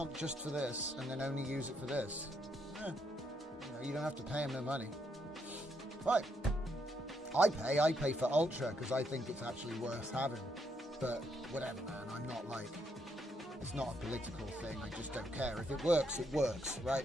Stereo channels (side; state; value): both; normal; correlation 0.76